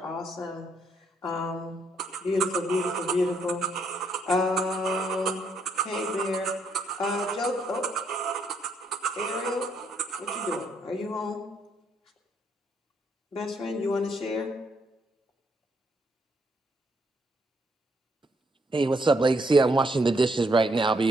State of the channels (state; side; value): normal; both; correlation 0.73